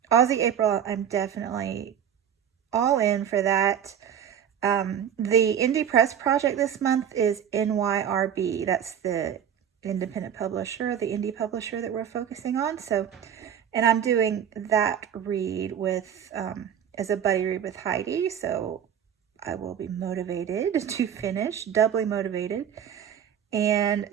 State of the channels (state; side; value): quieter; left; 9.0 dB